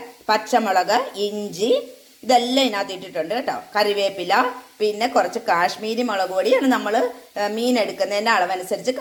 പച്ചമുളക്, ഇഞ്ചി ഇതെല്ലാം ഇതിനകത്ത് ഇട്ടിട്ടുണ്ട് കേട്ടോ. കറിവേപ്പില, പിന്നെ കുറച്ച് കാശ്മീരി മുളക് പൊടിയാണ്. നമ്മൾ മീൻ എടുക്കുന്നതിൻ്റെ അളവനുസരിച്ച്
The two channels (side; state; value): both; identical; correlation 1.00